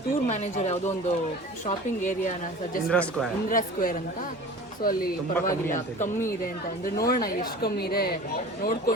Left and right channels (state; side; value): normal; both; correlation 0.40